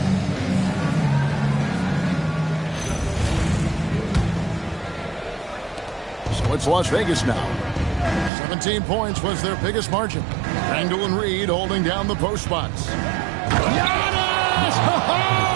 So it's Las Vegas now. 17 points was their biggest margin. Randall and Reed holding down the post spots.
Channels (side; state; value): left; drops out; at 8.3 s